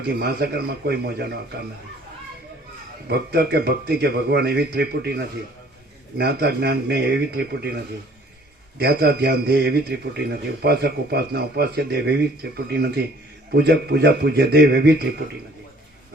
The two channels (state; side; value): normal; both; correlation 0.56